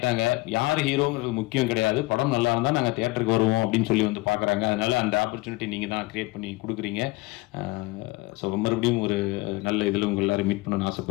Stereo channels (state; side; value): quieter; right; 22.0 dB